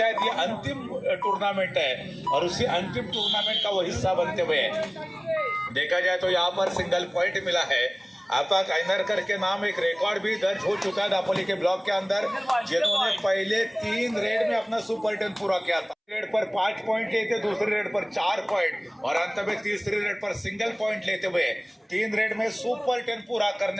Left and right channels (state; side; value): identical; both; correlation 1.00